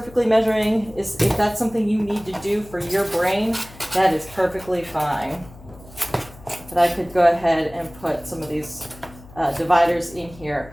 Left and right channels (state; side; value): noise; left; hum, 20 dB below the sound